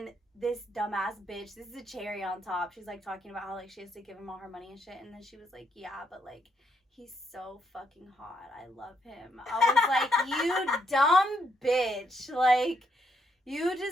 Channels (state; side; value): normal; both; correlation 0.75